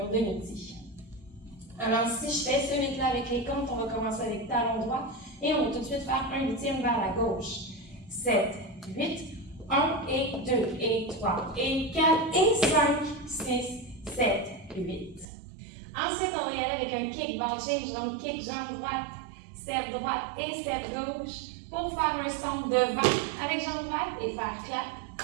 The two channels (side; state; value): left; drops out; at 15.2 s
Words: de midi. Alors, si je fais ce 8-là avec les comptes, on va commencer avec talon droit et on va tout de suite faire un huitième vers la gauche. 7, 8, 1 et 2 et 3 et 4 et 5, 6, 7, 8. Ensuite, on va y aller avec un kick ball change, donc kick jambe droite, step droite et step gauche pour faire un stomp devant avec jambe droite et faire